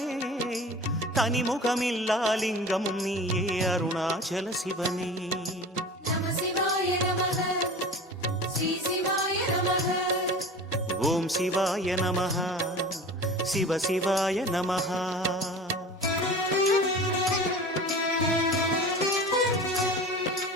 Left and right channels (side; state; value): both; normal; correlation 0.37